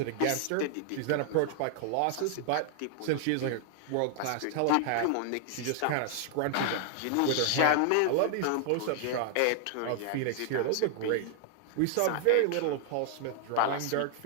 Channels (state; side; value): different; both; correlation -0.01